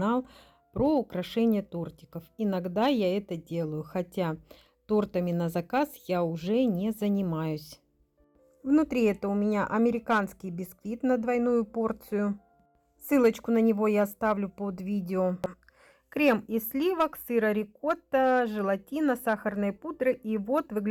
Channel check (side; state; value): both; identical; correlation 1.00